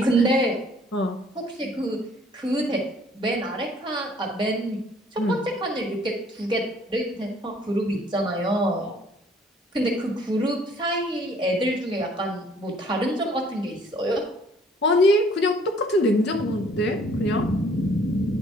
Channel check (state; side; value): normal; both; correlation 0.59